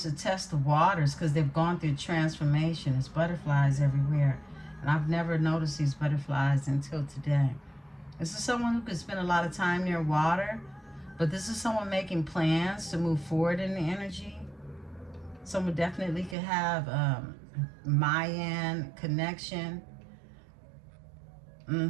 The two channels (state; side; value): drops out; left; at 16.4 s